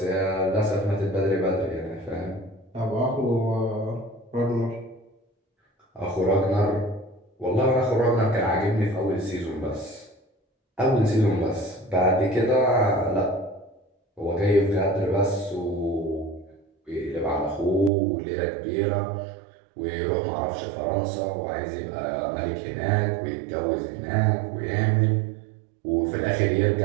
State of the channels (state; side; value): drops out; left; at 17.9 s